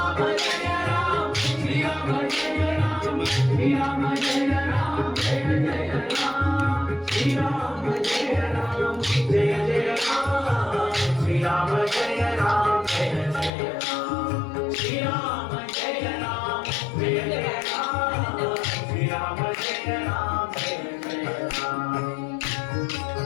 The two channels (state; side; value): drops out; right; at 13.5 s